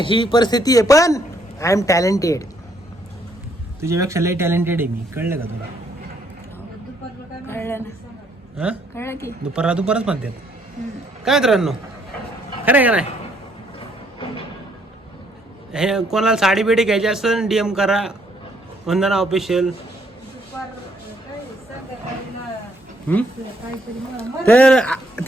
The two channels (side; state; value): both; normal; correlation 0.70